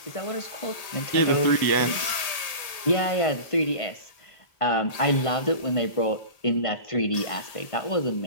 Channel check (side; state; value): right; late; 1.8 ms